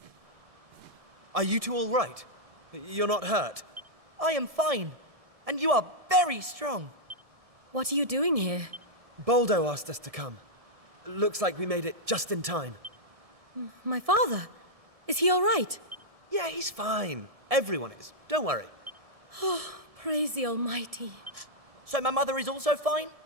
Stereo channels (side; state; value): left; late; 1.7 ms